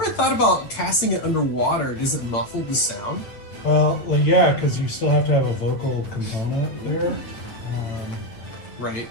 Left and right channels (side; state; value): right; late; 9.2 ms